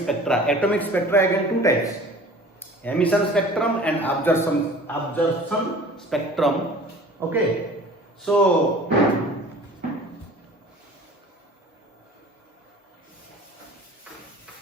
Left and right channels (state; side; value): normal; both; correlation 0.45